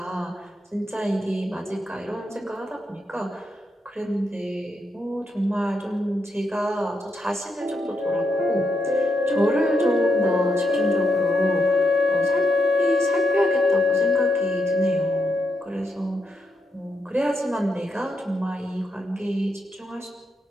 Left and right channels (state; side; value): normal; both; correlation 0.82